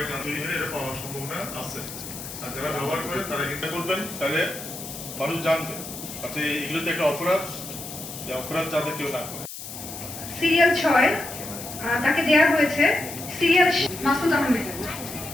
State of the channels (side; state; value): left; noise; hiss, 10 dB below the sound